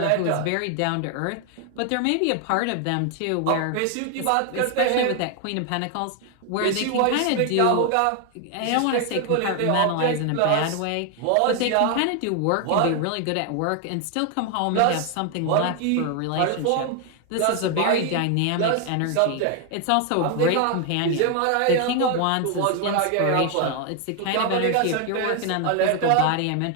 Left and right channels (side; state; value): both; different; correlation 0.01